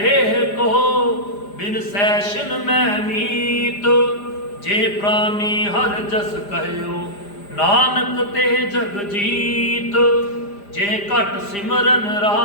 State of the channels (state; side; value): late; right; 5.0 ms